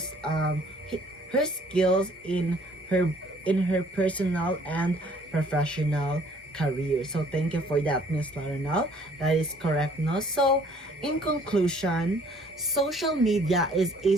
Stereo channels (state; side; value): normal; both; correlation 0.58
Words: her skills in her personal and professional career. So thank you for that, Miss Larinal. That is correct, no? So in conclusion, social media